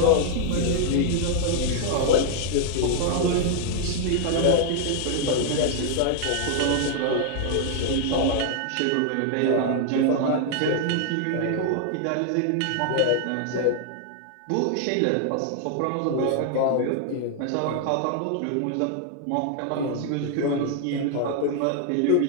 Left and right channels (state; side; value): different; both; correlation 0.00